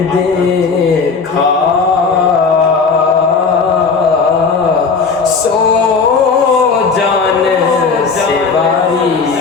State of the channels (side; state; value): right; quieter; 5.0 dB